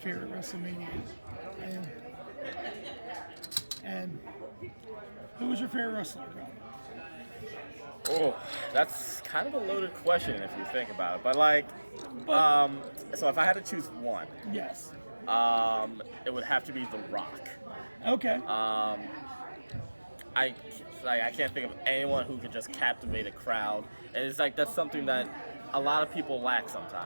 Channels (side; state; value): both; inverted; correlation -1.00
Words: WrestleMania. And who was your favorite wrestler, bro? Oh, that's kind of a loaded question if you think about it. But like, so if I had to choose one, yes, it would have to be The Rock. Okay. I can't think of anyone who could just captivate a crowd, and it's like that's something that a lot of people lack